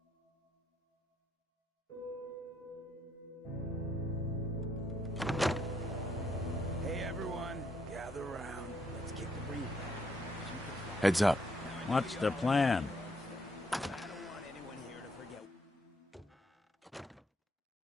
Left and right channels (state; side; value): normal; both; correlation 0.74